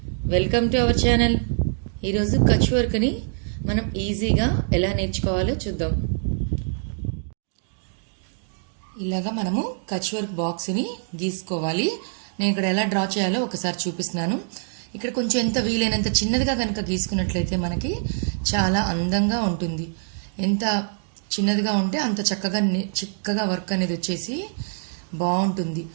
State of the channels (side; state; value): left; silent; digital silence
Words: welcome to our channel. ఈరోజు కచ్ వర్క్ని మనం ఈజీగా ఎలా నేర్చుకోవాలో చూద్దాం. ఇలాగా మనము కచ్ వర్క్ బాక్స్ని గీసుకోవాలి. నేను ఇక్కడ ఎలా డ్రా చేయాలో ఒకసారి చూపిస్తున్నాను. ఇక్కడ కొంచెం ఎంత వీలైనంత చిన్నదిగా కనుక గీసుకున్నట్లయితే మనకి చాలా అందంగా ఉంటుంది. ఎంత చిన్నదిగా ఉంటే అంత చక్కగా వర్క్ అనేది వచ్చేసి బాగుంటుంది.